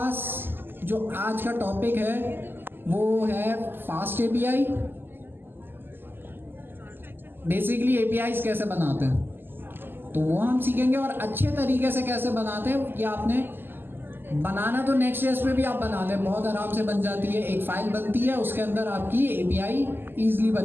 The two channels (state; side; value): late; left; 0.096 ms